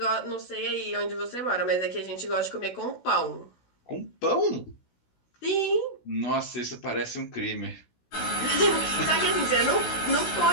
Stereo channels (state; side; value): late; right; 16 ms